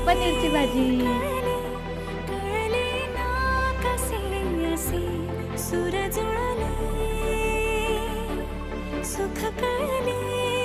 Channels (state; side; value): identical; both; correlation 1.00